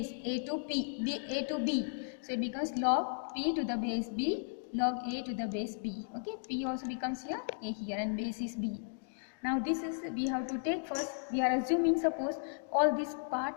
a to a to b. So it becomes log p to the base b, log a to the base b. Okay, p also becomes here, a here, and base is b. Now this is, we have to take first, we are assuming, suppose all this part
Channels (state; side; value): silent; right; digital silence